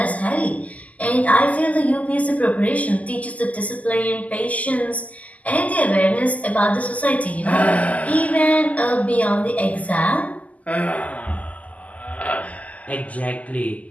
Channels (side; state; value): right; late; 0.074 ms